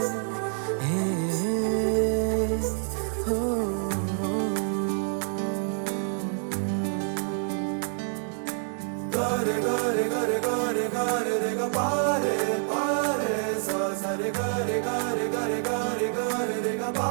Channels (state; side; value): silent; left; 60 dB below the other